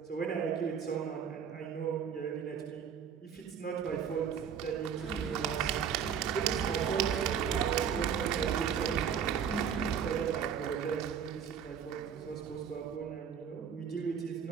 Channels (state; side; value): quieter; left; 7.6 dB